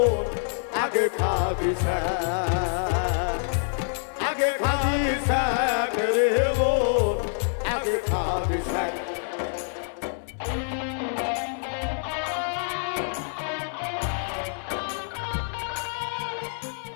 আগে খাবি শাক, আগে খাবি শাক রে বোন, আগে খাবি শাক।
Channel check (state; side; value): silent; right; 61 dB below the other